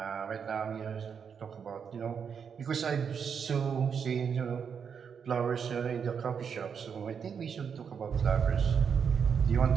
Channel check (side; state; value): left; quieter; 6.8 dB